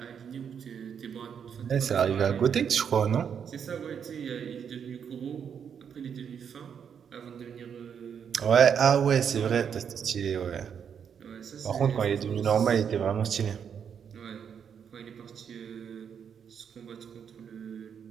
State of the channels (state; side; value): quieter; left; 7.6 dB